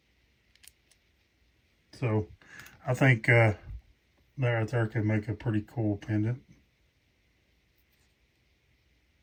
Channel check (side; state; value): both; identical; correlation 1.00